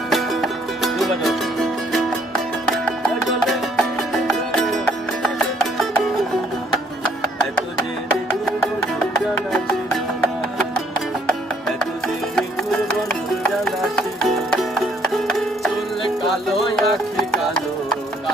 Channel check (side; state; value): both; normal; correlation 0.65